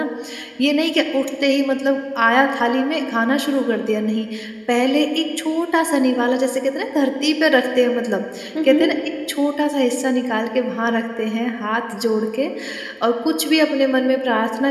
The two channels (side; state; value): both; identical; correlation 1.00